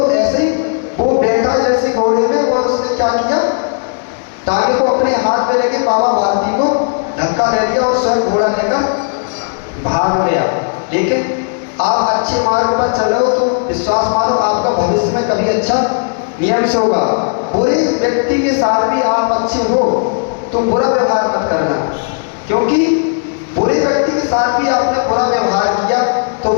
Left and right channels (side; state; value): right; silent; 66 dB below the other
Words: ऐसे ही वो बैठा जैसे घोड़े में, और उसने क्या किया? टांगे को अपने हाथ में लेके बाबा भारती को धक्का दे दिया और स्वयं घोड़ा लेकर भाग गया। लेकिन आप अच्छे मार्ग पर चल रहे हो तो विश्वास मानो आपका भविष्य में कभी अच्छा नियम से होगा। बुरे व्यक्ति के साथ भी आप अच्छे हो तो बुरा व्यवहार मत करना, क्योंकि बुरे व्यक्ति के साथ भी आपने बुरा व्यवहार किया तो